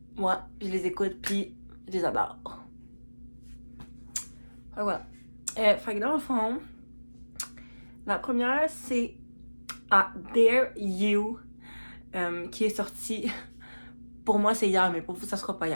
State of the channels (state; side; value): inverted; both; correlation -1.00